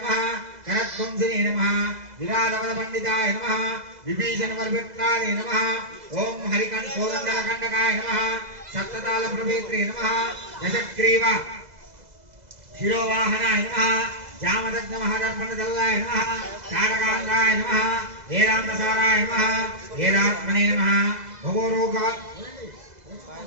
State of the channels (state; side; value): late; left; 2.0 ms